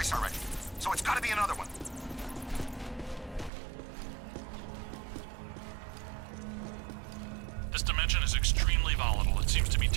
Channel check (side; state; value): left; drops out; at 3.5 s